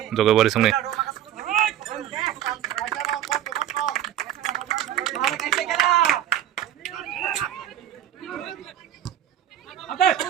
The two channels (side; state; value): left; quieter; 11.4 dB